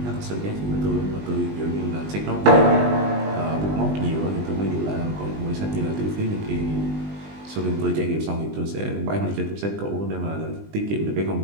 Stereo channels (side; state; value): left; late; 20 ms